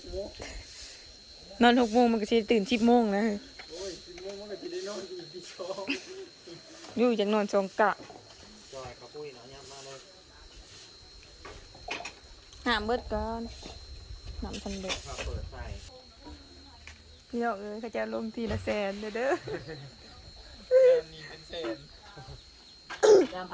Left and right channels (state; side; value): identical; both; correlation 1.00